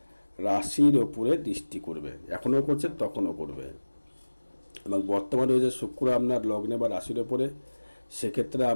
রাশির ওপরে দৃষ্টি করবে, এখনও করছে তখনও করবে। এবং বর্তমানে রয়েছে শুক্র আপনার লগ্নে বা রাশির ওপরে, সেক্ষেত্রে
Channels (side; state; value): both; inverted; correlation -1.00